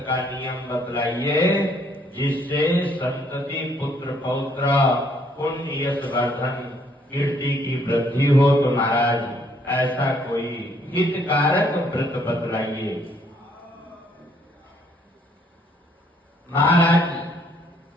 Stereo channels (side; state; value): both; normal; correlation 0.67